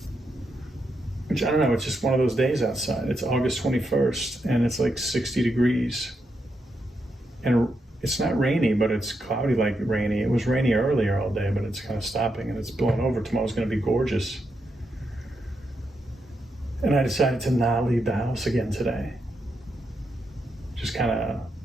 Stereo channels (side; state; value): both; normal; correlation 0.83